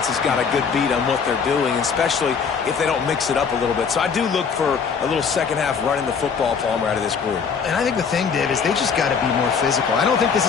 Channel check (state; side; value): quieter; right; 6.1 dB